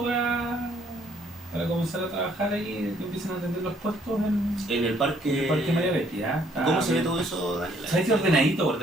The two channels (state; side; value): normal; both; correlation 0.65